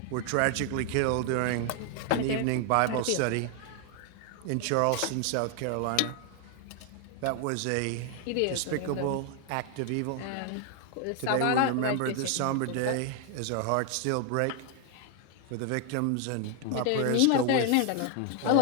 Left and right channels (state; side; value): different; both; correlation 0.00